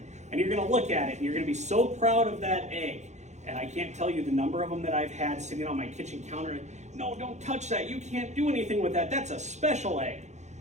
And you're gonna look at it and you're gonna be so proud of that egg. And I can't tell you the number of them that I've had sitting on my kitchen counter. No, don't touch that. You can't do anything with that. That's a special egg.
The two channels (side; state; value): left; late; 0.33 ms